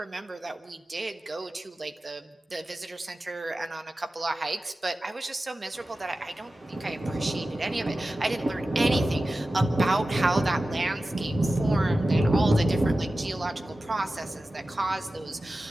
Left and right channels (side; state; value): both; normal; correlation 0.95